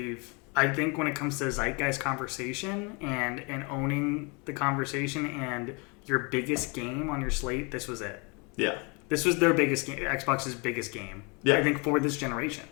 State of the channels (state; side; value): quieter; right; 31.2 dB